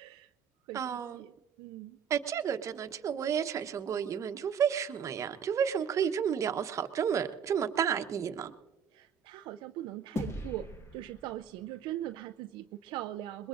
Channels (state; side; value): quieter; left; 7.6 dB